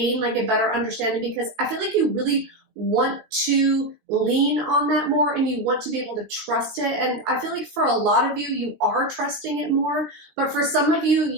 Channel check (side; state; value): left; late; 19 ms